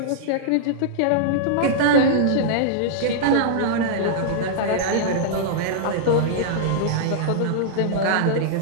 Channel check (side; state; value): both; different; correlation -0.02